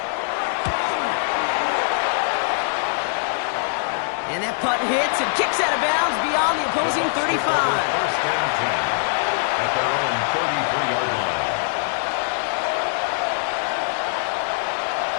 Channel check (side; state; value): right; silent; digital silence